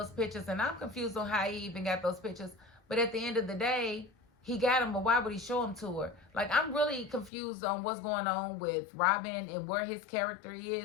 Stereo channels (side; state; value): right; drops out; at 7.3 s